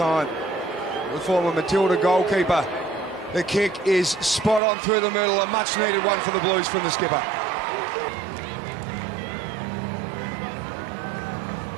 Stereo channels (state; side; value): drops out; left; at 4.6 s